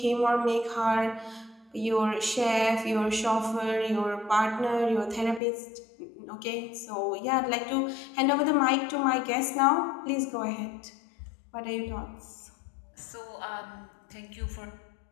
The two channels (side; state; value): right; drops out; at 5.4 s